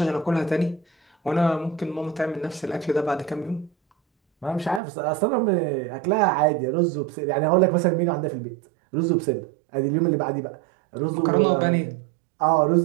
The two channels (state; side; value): drops out; left; at 4.8 s